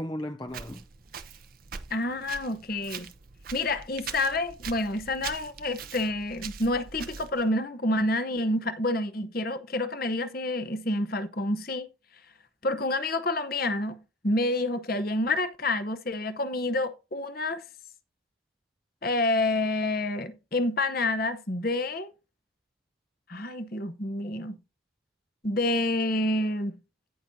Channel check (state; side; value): normal; both; correlation 0.39